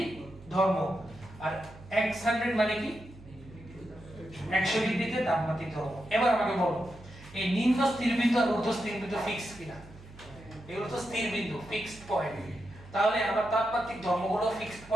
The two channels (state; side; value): noise; right; hum, 19 dB below the sound